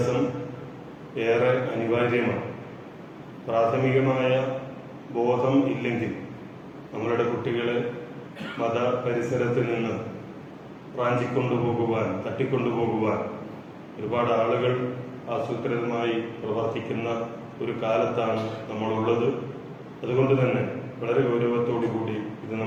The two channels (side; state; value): both; identical; correlation 1.00